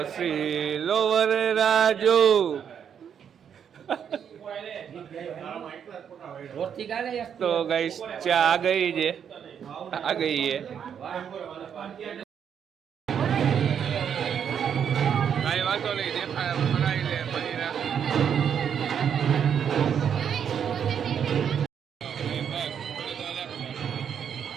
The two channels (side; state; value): left; quieter; 8.1 dB